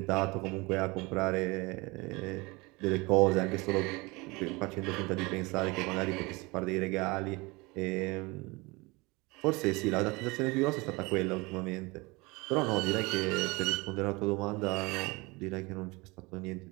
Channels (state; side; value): quieter; left; 24.8 dB